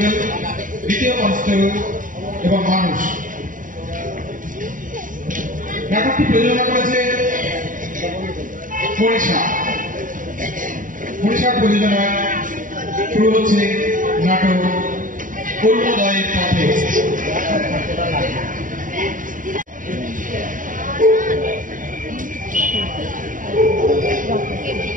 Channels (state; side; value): late; left; 0.39 ms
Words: দ্বিতীয় কনস্টেবল এবং মানুষ। নাটকটি প্রযোজনা করেছে মনীষার প্রযোজনায় শুরু হচ্ছে নাটক অরুণোদয়ের পথে।